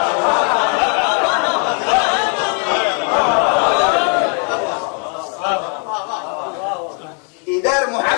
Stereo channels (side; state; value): right; quieter; 39.4 dB